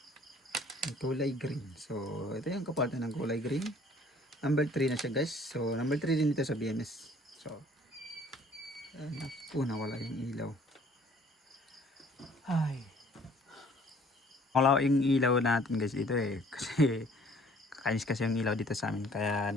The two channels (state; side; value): normal; both; correlation 0.56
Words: Yung kulay green. So ito yung kapalitan ng kulay green. Number 3 na siya guys. So number 3 din dito sa BMS. So nawala yung ilaw. Ay. Wala yung ilaw natin guys dito eh. Kasi kakainis kasi yung ilaw dito sa amin. Kaya